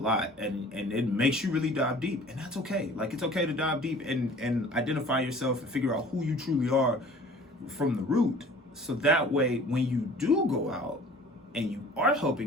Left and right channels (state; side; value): normal; both; correlation 0.48